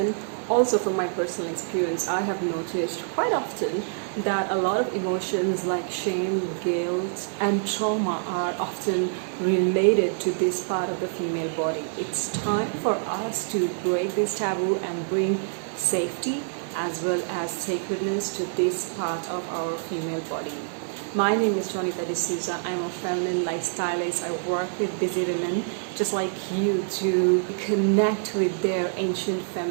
also from my personal experience, I have noticed quite often that a lot of emotions like shame, guilt, and trauma are often related to this part of the female body. It's time for us to break this taboo and bring safety as well as sacredness to this part of our female body. My name is Yoni. I'm a feminine lifestylist. I work with busy women just like you to connect with their ancient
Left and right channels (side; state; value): left; silent; 60 dB below the other